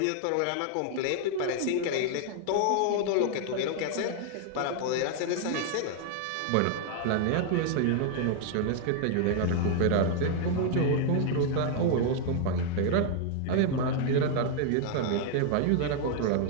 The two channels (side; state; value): both; different; correlation 0.00